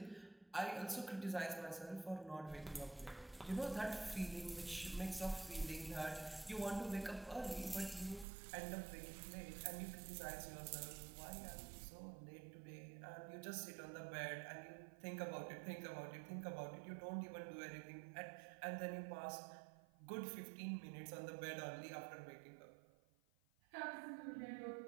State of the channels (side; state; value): left; drops out; at 8.2 s